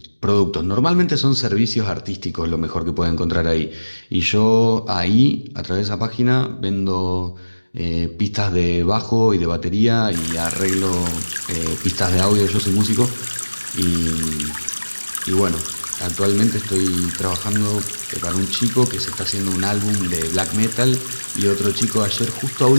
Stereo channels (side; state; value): both; inverted; correlation -1.00